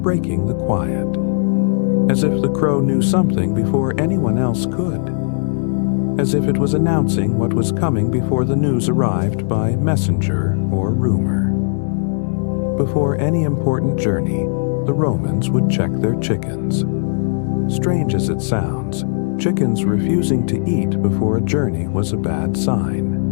breaking the quiet, as if the crow knew something before anyone else could, as if it was announcing what was coming before the news arrived by messenger or rumor. Before any important journey, the Romans would check their chickens. Strange as it sounds, chickens refusing to eat before a journey was a bad sign.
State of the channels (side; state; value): right; silent; digital silence